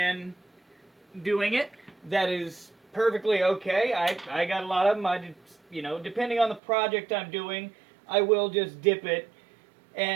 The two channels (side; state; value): left; drops out; at 6.6 s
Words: doing it, that is perfectly okay. I got a lot of them. You know, depending on the project I'm doing, I will just dip it